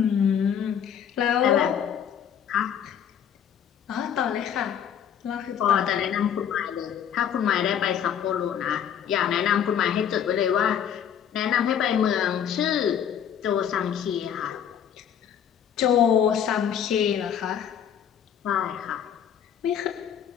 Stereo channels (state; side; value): quieter; right; 8.8 dB